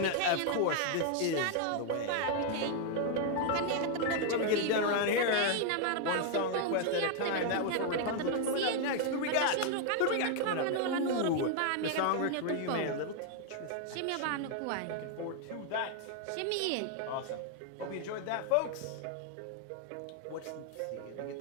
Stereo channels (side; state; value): both; different; correlation 0.00